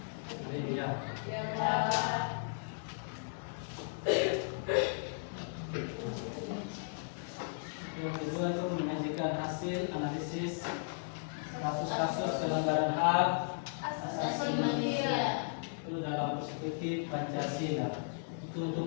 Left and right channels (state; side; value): silent; right; digital silence